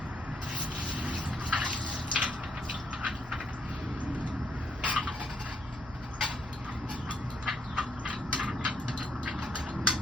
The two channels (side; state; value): both; normal; correlation 0.73